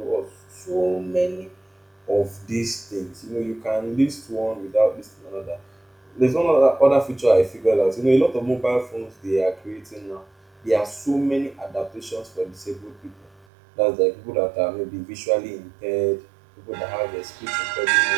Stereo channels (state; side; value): drops out; left; at 13.5 s